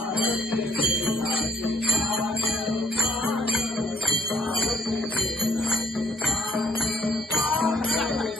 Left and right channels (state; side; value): normal; both; correlation 0.64